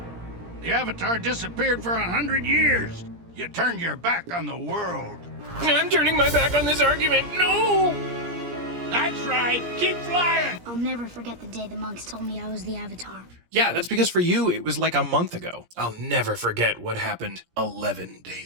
The Avatar disappeared for 100 years. You turned your back on the world. I'm turning my back on this argument. No! That's right. Keep flying. I'll never forget the day the monks told me I was the Avatar. Yeah, that's because for you, it was like a month ago. I'll never forget what happened 11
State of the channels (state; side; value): late; left; 17 ms